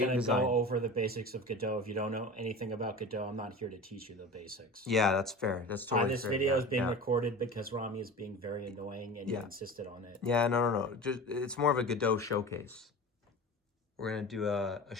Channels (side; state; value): both; normal; correlation 0.33